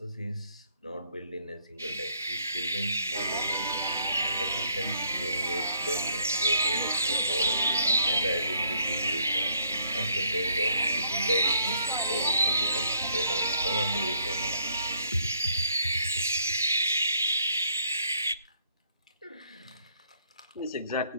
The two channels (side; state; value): both; inverted; correlation -0.68